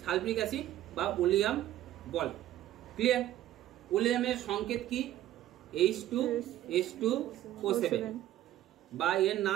সালফিউরিক অ্যাসিড বা ওলিয়াম বলে। ক্লিয়ার? ওলিয়ামের সংকেত কি? H2SO7 বা এর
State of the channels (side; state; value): left; quieter; 13.4 dB